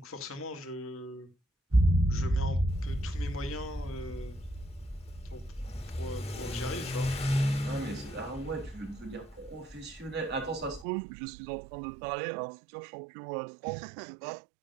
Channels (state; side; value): drops out; left; at 10.9 s